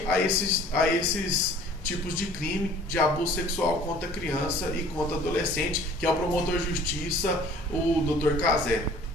a esses tipos de crime de abuso sexual contra criança e contra adolescente, que é o promotor de justiça, o Dr. Cazé.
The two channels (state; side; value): normal; both; correlation 0.50